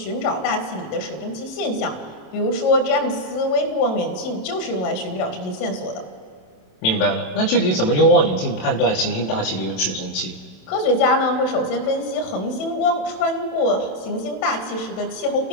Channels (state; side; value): late; right; 27 ms